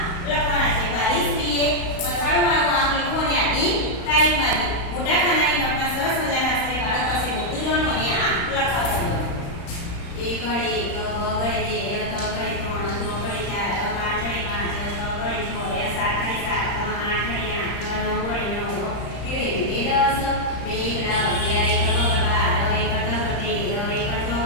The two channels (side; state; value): right; late; 35 ms